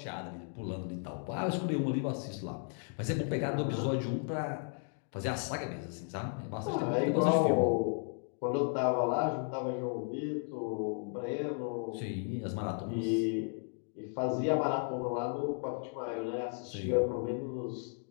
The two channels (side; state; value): right; silent; 55 dB below the other